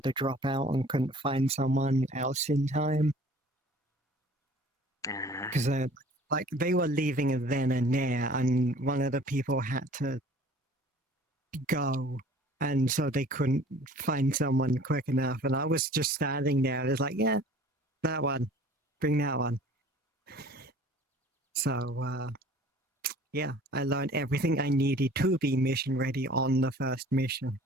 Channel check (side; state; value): both; normal; correlation 0.49